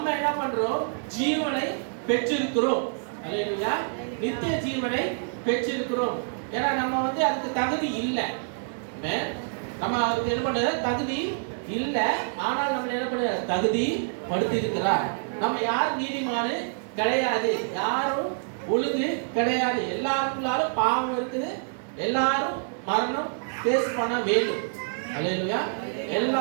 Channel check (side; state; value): left; silent; digital silence